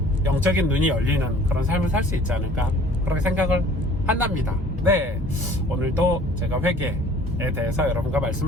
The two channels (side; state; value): both; normal; correlation 0.51